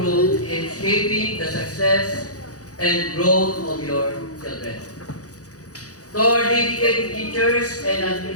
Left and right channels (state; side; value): late; right; 0.67 ms